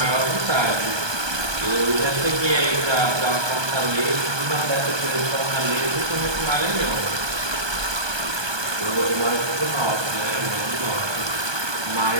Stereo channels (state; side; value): late; left; 1.2 ms